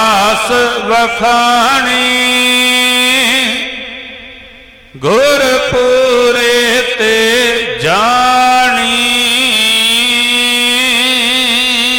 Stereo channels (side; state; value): both; identical; correlation 1.00